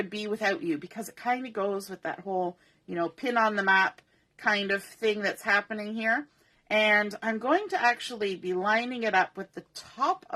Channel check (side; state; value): both; identical; correlation 1.00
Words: be without you, because it kind of goes with that whole, you know, pin on the map kind of thing that's happening here. And I'm going to actually be lining it up with the top